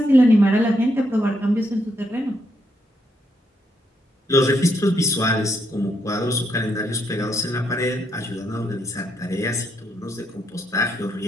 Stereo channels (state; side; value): normal; both; correlation 0.76